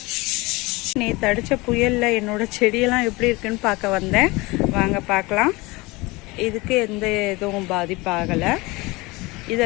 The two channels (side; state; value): right; quieter; 23.4 dB